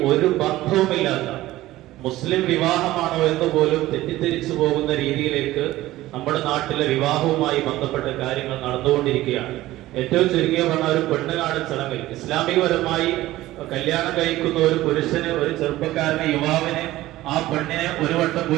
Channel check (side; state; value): left; quieter; 16.3 dB